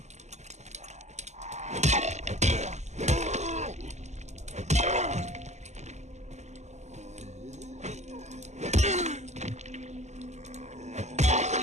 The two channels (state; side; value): late; left; 0.33 ms